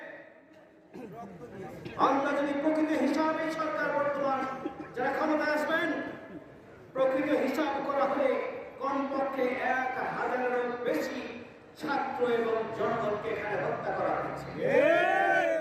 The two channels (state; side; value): identical; both; correlation 1.00